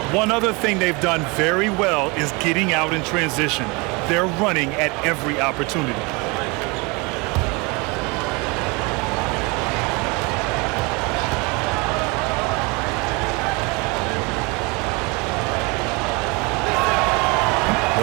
One other thing they've done very well is getting out in transition. They're running at every opportunity.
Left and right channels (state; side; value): quieter; left; 27.4 dB